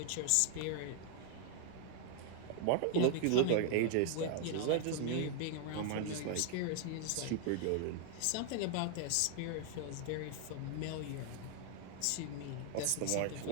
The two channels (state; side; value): different; both; correlation 0.00